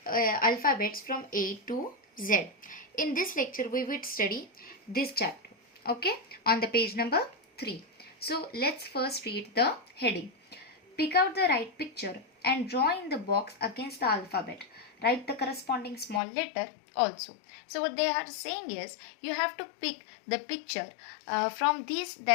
alphabets from A to Z. In this lecture we would study this chapter. Okay, on the page number 3. So let's first read the heading. Pick out the right picture and draw in the box against the alphabet. Write the corresponding small letter also. So what they are saying is you have to pick the picture from these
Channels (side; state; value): right; drops out; at 16.2 s